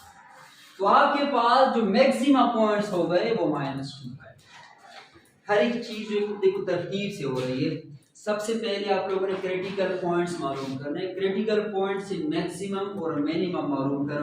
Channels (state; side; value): identical; both; correlation 1.00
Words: तो आपके पास जो मैक्सिमा पॉइंट्स हो गए वो -2 है। हर एक चीज देखो तरतीब से हो रही है। सबसे पहले आप लोगों ने क्रिटिकल पॉइंट्स मालूम करने, क्रिटिकल पॉइंट से मैक्सिमम और मिनिमम मालूम